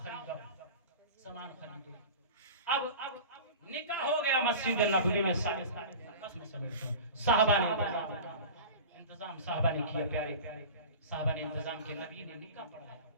خریدو، سامان خریدو۔ اب نکاح ہو گیا مسجد نبوی میں، صحابہ نے انتظام صحابہ نے کیا، پیارے صحابہ نے انتظام کیا، نبی نے نکاح پڑھایا۔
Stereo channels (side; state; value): both; inverted; correlation -0.35